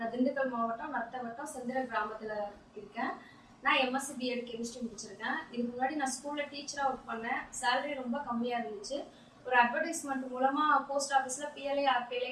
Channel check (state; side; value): identical; both; correlation 1.00